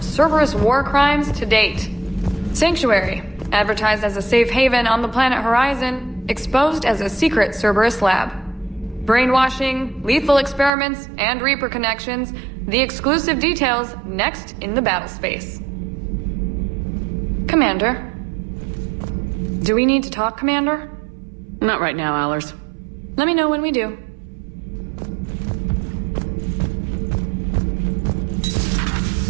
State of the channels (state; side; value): drops out; left; at 10.7 s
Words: Cerberus war crimes to date. Sanctuary, advertised as a safe haven on the planet Horizon, exposed as a secret Cerberus lab. Brainwashing, lethal experiments, and Reaper connections, the exclusive details next in the battle space. Commander? Do we need to talk, Commander? Not right now, Allers. Let me know when we do.